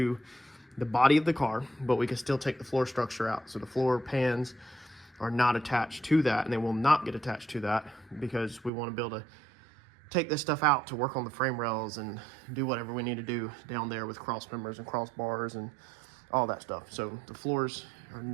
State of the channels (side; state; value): left; drops out; at 8.7 s